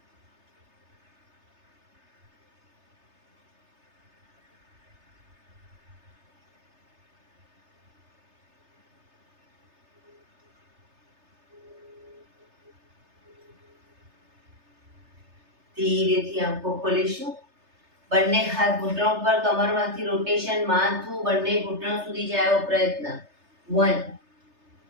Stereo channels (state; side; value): late; left; 3.3 ms